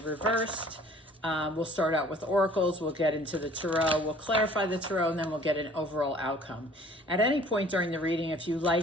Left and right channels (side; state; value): both; normal; correlation 0.52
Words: We'll start out with oracles, we'll get into the tarot, we'll clarify the tarot, and then we'll get an overall outcome. At any point during the reading, if you